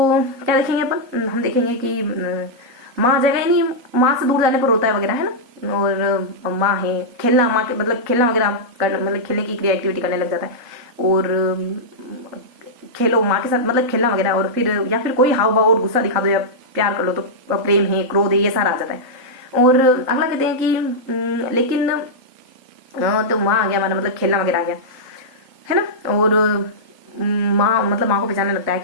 क्या देखेंगे अपन, हम देखेंगे कि माँ आ जाएगा, यानी माँ से दूर जाने पर रोता है वगैरह, है ना। और माँ है, खेलना, माँ के मतलब खेलना वगैरह करना, मतलब खेलने की क्रिया एक्टिविटी करने लग जाता है। और खेलो माँ के साथ, मतलब खेलना वगैरह, और फिर या फिर कोई हाव भाव और गुस्सा दिखा दो या प्यार कर लो, तो प्रेम है, क्रोध है, ये सारा आ जाता है। और अगला कहते हैं कि लेकिन तो माँ आ गया हमारा, मतलब खेलना वगैरह आ गया, है ना। और माँ मतलब माँ को पहचानने लगता है,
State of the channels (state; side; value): late; left; 4.3 ms